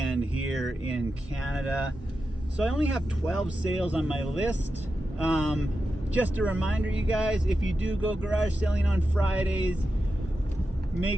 here in Canada. So I only have 12 sales on my list. Just a reminder, you guys, if you do go garage selling on Fridays,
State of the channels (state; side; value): normal; both; correlation 0.90